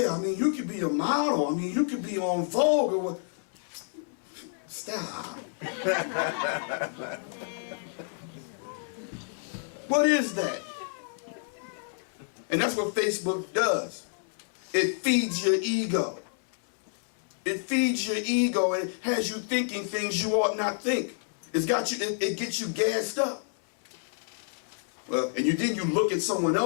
I mean, you could be a model. I mean, you could be on Vogue or what. Stop. What is that? And that's what Facebook does. It feeds your ego. It feeds your ego and has you thinking things you ought not think. It's got you, it gets you gassed up. Well, and then you look at someone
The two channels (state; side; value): silent; right; 58 dB below the other